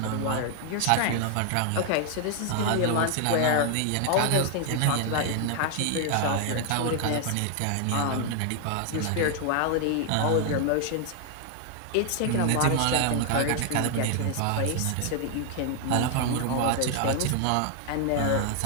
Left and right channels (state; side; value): different; both; correlation 0.00